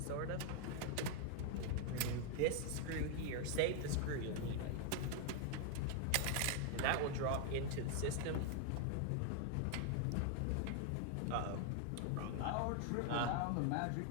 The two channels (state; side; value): different; both; correlation 0.00